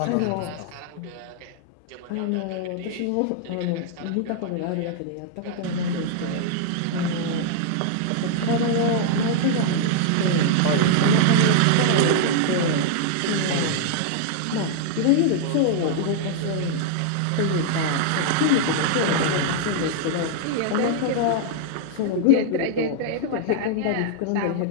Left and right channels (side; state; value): both; different; correlation -0.01